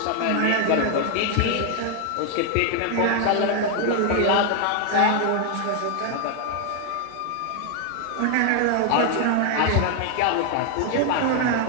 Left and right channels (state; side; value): different; both; correlation 0.01